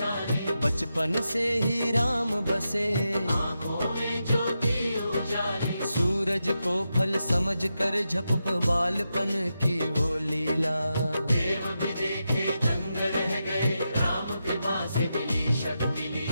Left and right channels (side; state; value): both; inverted; correlation -0.87